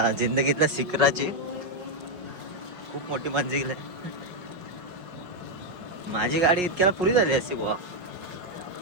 जिंदगीतल्या शिखराची. खूप मोठी मंजिल आहे. माझी गाडी इतक्याला पुरी झाली असती बुवा.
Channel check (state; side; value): late; left; 5.5 ms